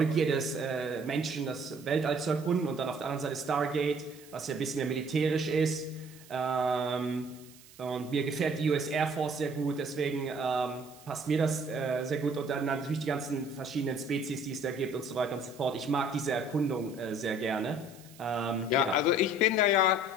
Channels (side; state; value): right; noise; hiss, 22 dB below the sound